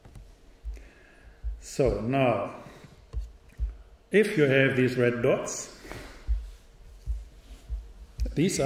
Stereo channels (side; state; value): both; identical; correlation 1.00